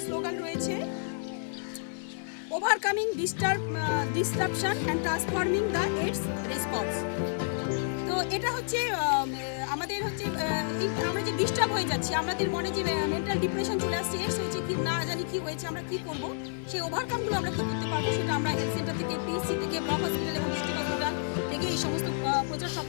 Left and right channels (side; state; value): right; silent; 57 dB below the other